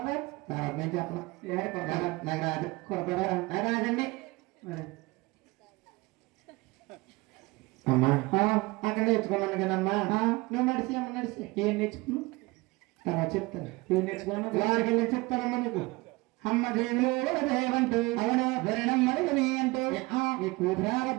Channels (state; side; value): quieter; left; 22.8 dB